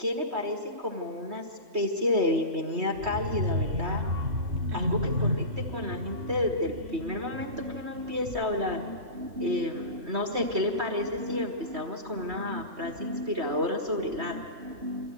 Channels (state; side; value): late; left; 3.2 ms